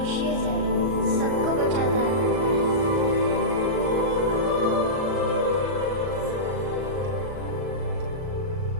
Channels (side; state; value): left; late; 38 ms